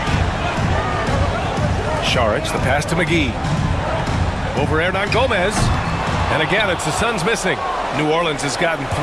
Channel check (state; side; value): identical; both; correlation 1.00